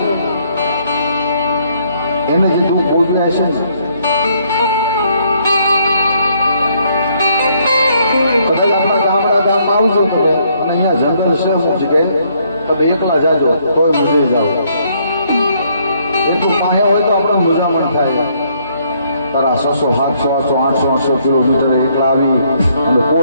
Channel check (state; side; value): inverted; both; correlation -0.69